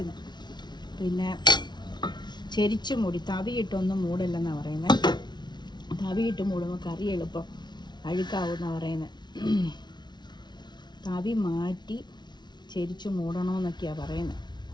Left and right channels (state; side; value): late; right; 0.21 ms